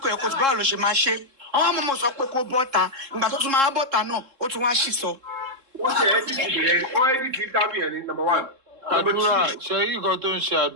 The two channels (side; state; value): left; late; 3.7 ms